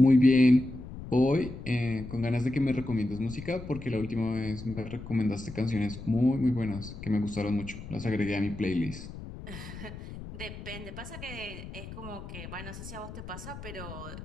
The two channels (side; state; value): left; noise; rumble, 12 dB below the sound